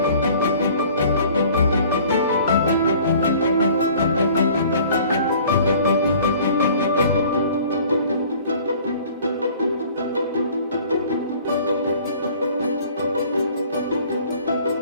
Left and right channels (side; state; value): both; inverted; correlation -0.51